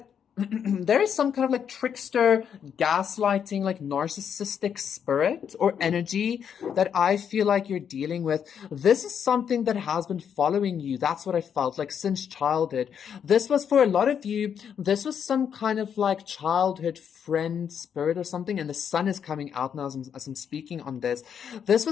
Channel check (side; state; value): right; quieter; 8.0 dB